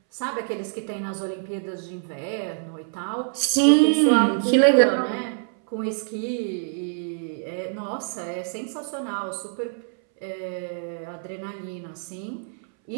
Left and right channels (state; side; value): silent; left; 61 dB below the other